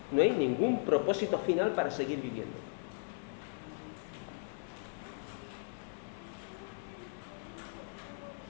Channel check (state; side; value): silent; right; digital silence